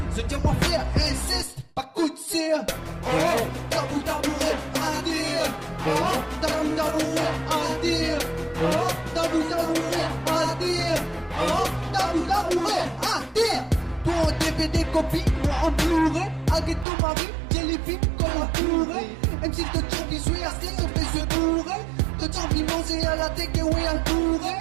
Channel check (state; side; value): drops out; left; at 16.9 s